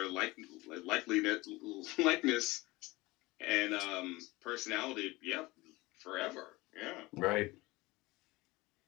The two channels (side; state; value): right; quieter; 21.4 dB